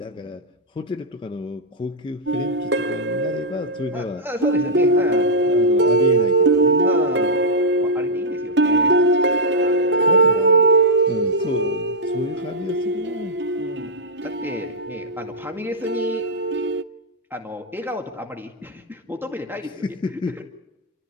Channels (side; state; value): both; normal; correlation -0.07